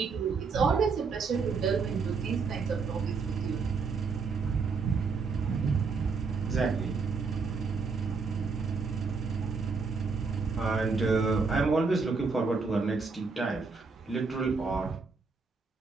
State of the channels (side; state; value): left; quieter; 4.7 dB